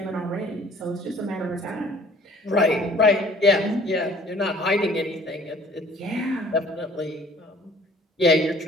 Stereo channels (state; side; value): normal; both; correlation 0.53